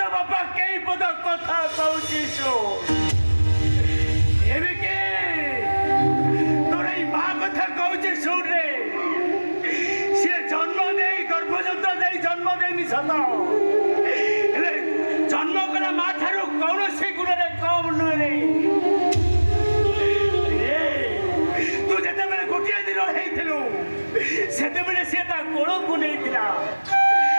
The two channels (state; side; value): inverted; both; correlation -1.00